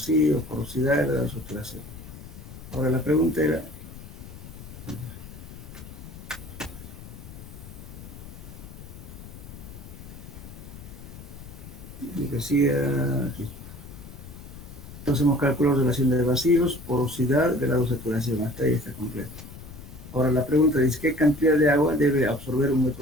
porosidad y la saturación. Ahora la pregunta era, y decía aquí, entonces hemos calculado relación de vacíos, porosidad, grado de saturación, hasta ahí está completo. Ahora la pregunta dice, ¿qué cantidad de agua debe absorber un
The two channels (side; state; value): left; noise; rumble, 14 dB below the sound